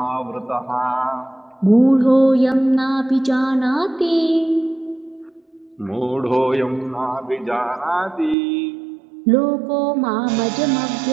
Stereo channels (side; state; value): left; drops out; at 8.3 s